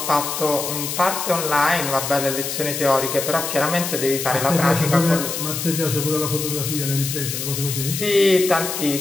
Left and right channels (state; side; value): noise; left; hiss, 4 dB below the sound